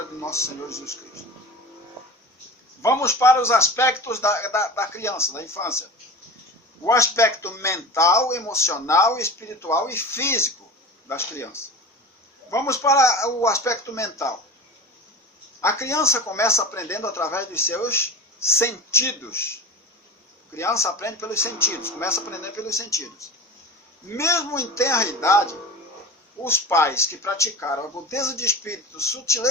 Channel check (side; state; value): both; normal; correlation 0.32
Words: do nosso Senhor Jesus Cristo. Vamos para os aspectos da criança, da infância. O aspecto mental, emocional, espiritual e físico das crianças. Vamos para o aspecto mental. A criança começa aprendendo através dos seus sentidos. A criança aprende pelos sentidos, começa a aprender pelos sentidos. Mesmo em tenra idade, os pais que praticaram agudeza de espírito,